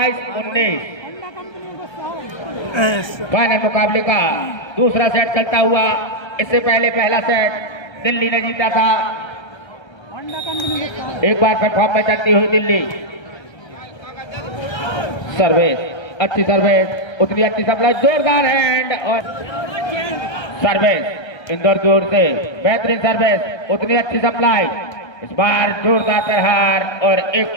फाइनल मुकाबले का दूसरा सेट चलता हुआ। इससे पहले पहला सेट दिल्ली ने जीता था। एक बार प्लेटफॉर्म में चलती हुई दिल्ली। सर्विस अच्छी सर्विस, उतनी अच्छी सप्लाई, जोरदार हैंड और सर्विस इंदौर की ओर से बेहतरीन सर्विस, उतनी अच्छी सप्लाई। इस बार जोरदार प्रहार और एक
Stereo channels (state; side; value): late; right; 1.3 ms